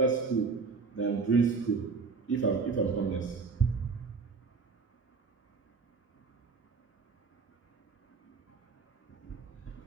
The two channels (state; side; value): quieter; left; 4.8 dB